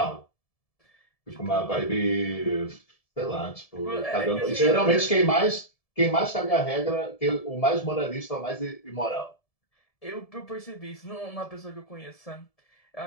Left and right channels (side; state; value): right; late; 1.7 ms